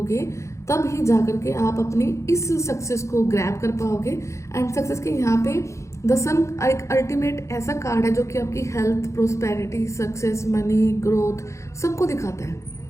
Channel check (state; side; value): late; right; 0.14 ms